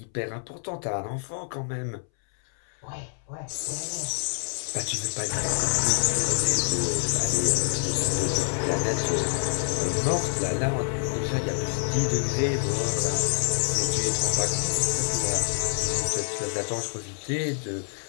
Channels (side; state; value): right; silent; 60 dB below the other